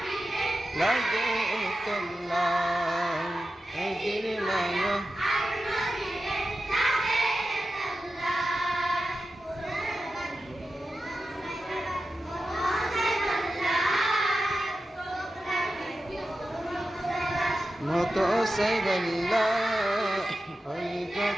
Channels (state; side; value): normal; both; correlation 0.92